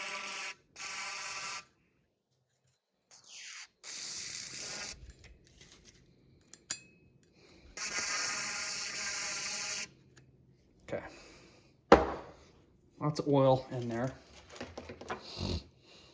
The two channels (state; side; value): identical; both; correlation 1.00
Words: Okay. Lots of oil in there.